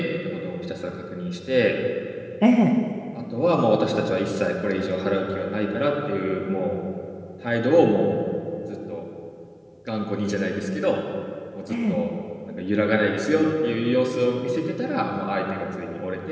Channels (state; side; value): identical; both; correlation 1.00